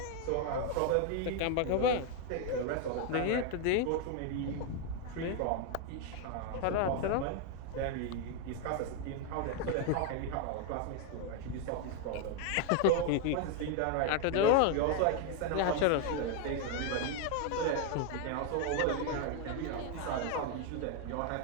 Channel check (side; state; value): both; different; correlation 0.01